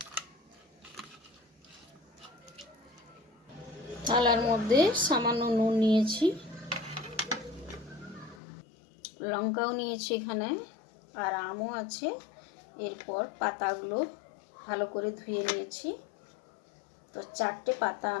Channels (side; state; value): right; drops out; at 8.4 s